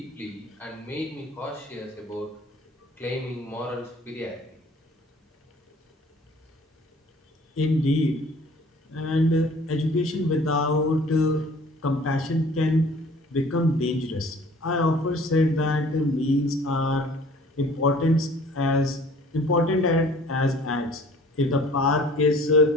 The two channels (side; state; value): both; normal; correlation 0.51